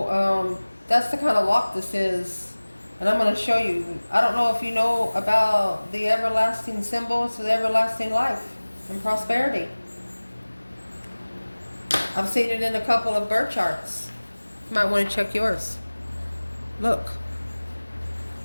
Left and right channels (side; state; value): both; inverted; correlation -1.00